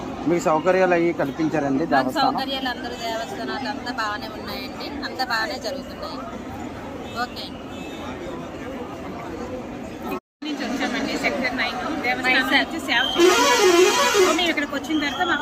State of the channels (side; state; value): both; identical; correlation 1.00